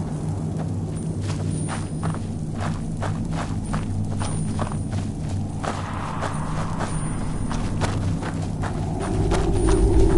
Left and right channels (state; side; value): identical; both; correlation 1.00